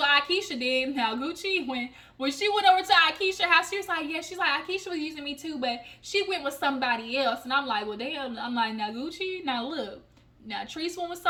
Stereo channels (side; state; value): both; identical; correlation 1.00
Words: Akeisha did. Now, Gucci, when she went over to Akeisha's house, she was like, yeah, she's like, Akeisha was using me too, but she went with somebody else. And I'm like, well, damn. I'm like, now, Gucci, now look. Now, Treese went with